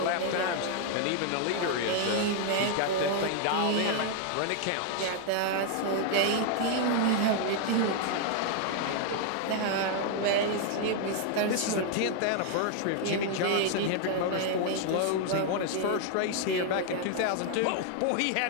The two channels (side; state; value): both; different; correlation 0.00